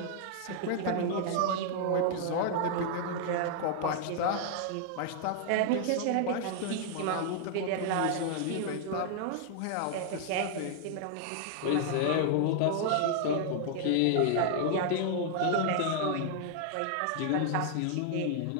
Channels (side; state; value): both; different; correlation 0.00